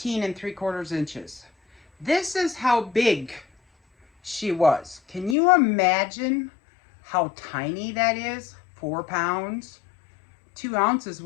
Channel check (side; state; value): right; drops out; at 5.4 s